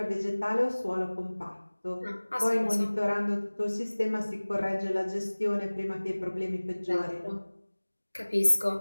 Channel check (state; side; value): inverted; both; correlation -1.00